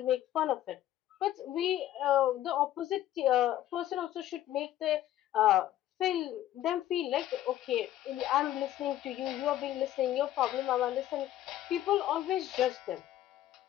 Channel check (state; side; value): quieter; right; 13.0 dB